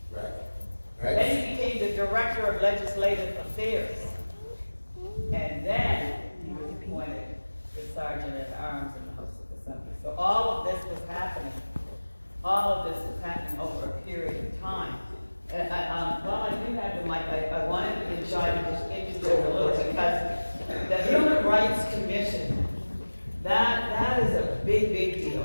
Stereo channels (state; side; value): inverted; both; correlation -1.00